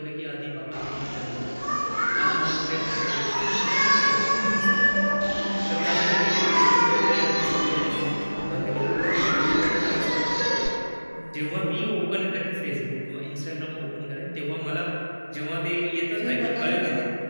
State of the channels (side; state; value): both; inverted; correlation -1.00